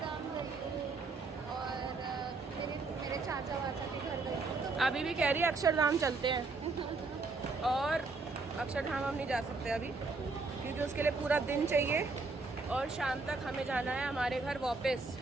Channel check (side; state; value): left; quieter; 3.8 dB